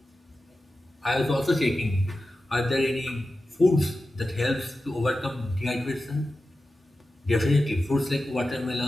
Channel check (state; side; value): normal; both; correlation 0.93